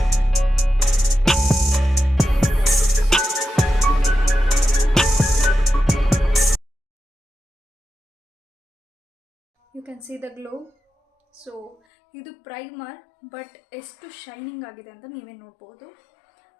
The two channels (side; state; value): right; drops out; at 11.8 s